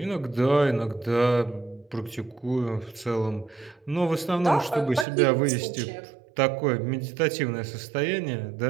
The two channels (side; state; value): left; drops out; at 5.1 s